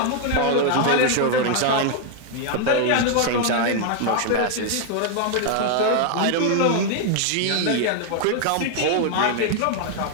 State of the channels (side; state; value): both; different; correlation 0.00